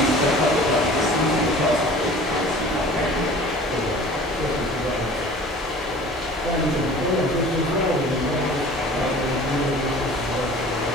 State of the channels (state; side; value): normal; both; correlation 0.45